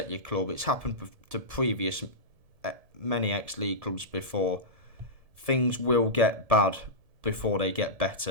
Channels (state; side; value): late; left; 1.7 ms